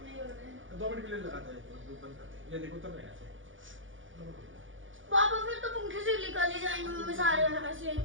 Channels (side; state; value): left; late; 0.57 ms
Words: 2 मिनट के लिए लगाता है, बंद करते हैं। ये देखो उतर रहे हैं ऐसे। पापा फिर तो पंखे से निकाले जाएंगे मम्मी सारे ऐसे